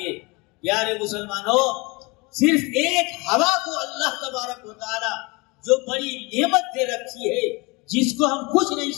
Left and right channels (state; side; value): quieter; right; 26.4 dB